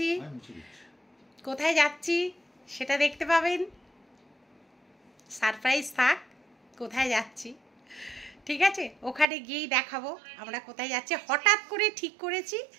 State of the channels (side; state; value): left; drops out; at 9.2 s